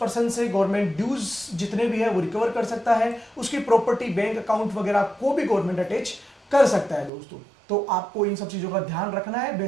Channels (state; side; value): drops out; left; at 7.1 s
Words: से गवर्नमेंट ड्यूज जितने भी है वो रिकवर कर सकता है। उसकी प्रॉपर्टी, बैंक अकाउंट वगैरह को भी गवर्नमेंट अटैच कर सकता है दोस्तों। तो आपको इन सब चीजों का ध्यान रखना है।